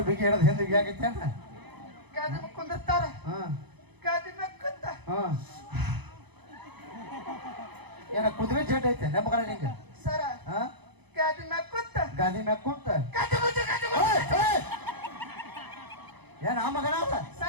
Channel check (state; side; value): late; left; 0.99 ms